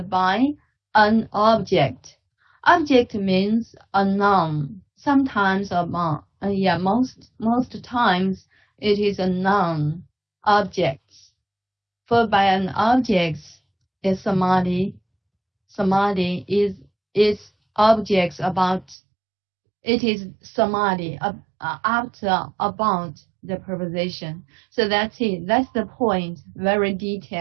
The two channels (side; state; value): left; drops out; at 18.9 s